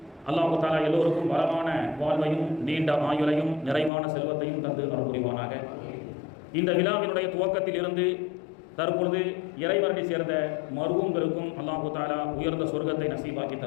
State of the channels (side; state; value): right; drops out; at 3.9 s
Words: அல்லாஹ் தஆலா எல்லோருக்கும் வளமான வாழ்வையும் நீண்ட ஆயுளையும் நிறைவான செல்வத்தையும் தந்து அருள் புரிவானாக. இந்த விழாவினுடைய துவக்கத்தில் இருந்து தற்பொழுது இறைவரடி சேர்ந்த மருவங்களுக்கும் அல்லாஹ் தஆலா உயர்ந்த சொர்க்கத்தை நசீபாக்கி